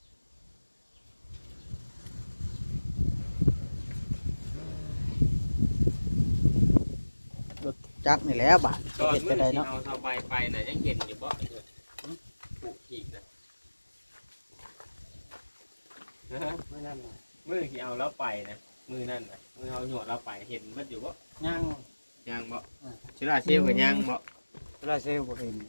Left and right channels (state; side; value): inverted; both; correlation -1.00